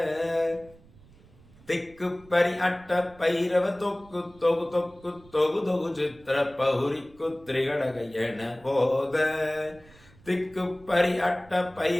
திக்கு பரி அட்ட பைரவ தொக்கு தொகு தொக்கு தொகு தொகு சித்திர பௌரிக்கு திரிகடக என போத. திக்கு பரி அட்ட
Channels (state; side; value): noise; right; rumble, 25 dB below the sound